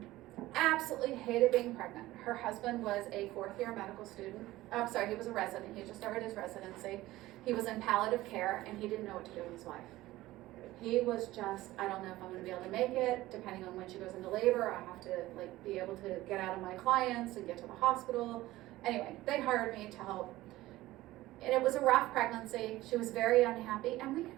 Absolutely hated being pregnant. Her husband was a 4th-year medical student. He was a resident. He just started his residency. He was in palliative care, and he didn't know what to do with his wife. He was just, I don't know if I'm going to be able to make it. Depending on when she goes into labor, I have to be able to get out of my clients and get to the hospital. Anyway, they hired me to help. And it was a rough pregnancy. She was very unhappy, and we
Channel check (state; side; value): quieter; left; 17.1 dB